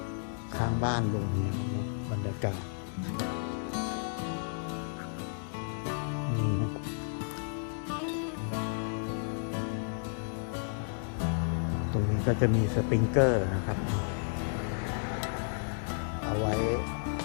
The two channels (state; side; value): silent; right; digital silence